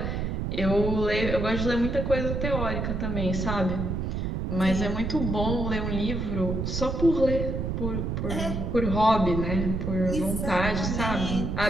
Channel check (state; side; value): noise; right; rumble, 2 dB below the sound